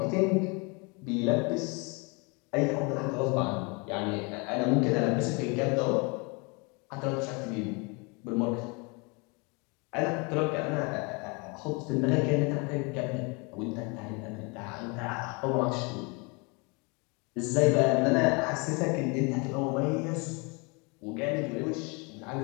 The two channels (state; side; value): quieter; right; 30.5 dB